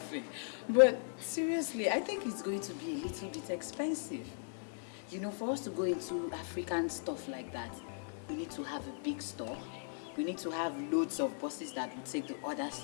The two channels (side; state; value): right; silent; 53 dB below the other